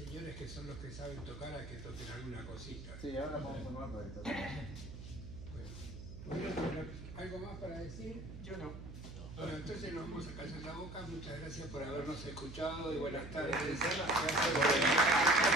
que son los que saben tocar a que toquen alguna cosita. Sí, ahora vamos a formar para esto. Bueno, ¿algo más para decir? Yo no. Bueno, entonces nos vamos a callar la boca. Muchas gracias por habernos escuchado y buenas tardes.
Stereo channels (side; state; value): right; noise; hum, 11 dB below the sound